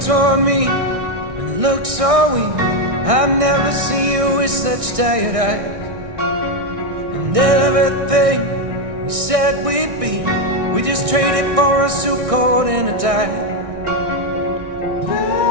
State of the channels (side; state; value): left; late; 1.6 ms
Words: me and look so weak. I've never seen you with such tired eyes. And everything we said we'd be, we just traded for a suit coat and a tie.